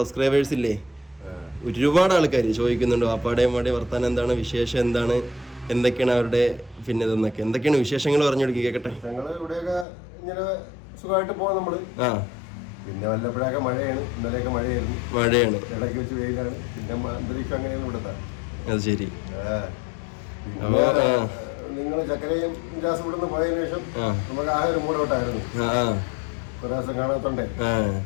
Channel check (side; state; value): right; drops out; at 9.9 s